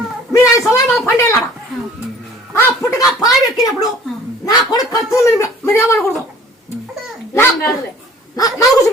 మీరు 5 సంవత్సరాలు పండేలాడా ఆ పుట్టగా పాలు ఎక్కినప్పుడు నా కొడుకు ఖర్చు మీరు ఏమనకూడదు నాకు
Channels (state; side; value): normal; both; correlation 0.51